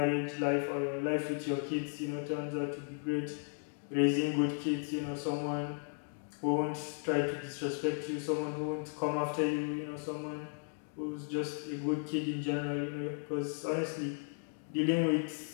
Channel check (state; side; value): silent; right; 54 dB below the other